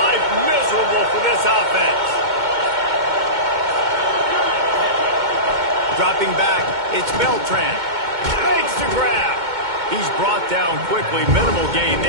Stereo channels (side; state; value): left; late; 2.2 ms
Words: miserable for this offense. Dropping back, it's Beltran. Makes the grab. He's brought down quickly. Minimal gain